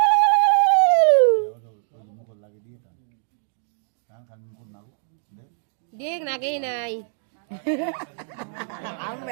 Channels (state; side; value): silent; left; digital silence